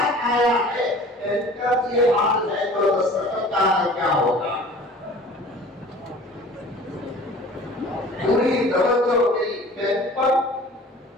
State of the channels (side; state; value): both; normal; correlation 0.45